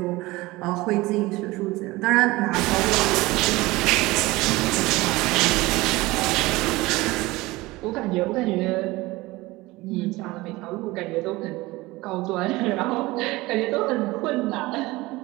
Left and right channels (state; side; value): quieter; left; 20.5 dB